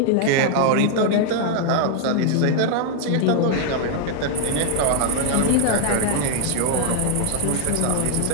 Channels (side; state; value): both; different; correlation 0.00